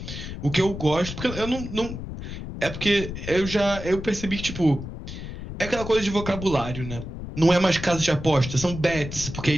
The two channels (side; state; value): left; noise; rumble, 9 dB below the sound